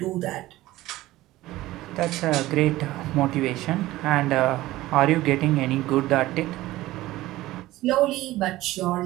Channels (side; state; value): left; quieter; 16.9 dB